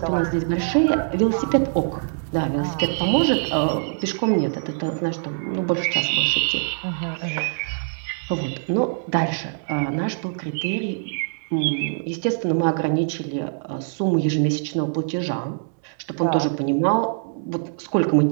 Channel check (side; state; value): left; silent; digital silence